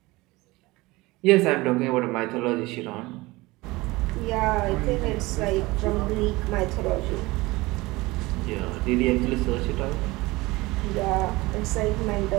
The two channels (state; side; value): quieter; left; 21.3 dB